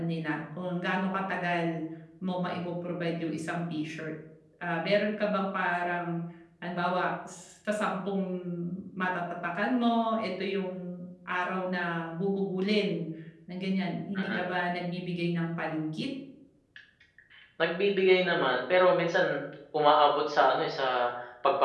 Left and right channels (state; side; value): identical; both; correlation 1.00